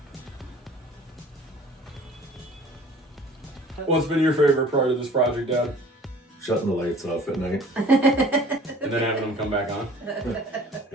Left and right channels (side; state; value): both; normal; correlation 0.48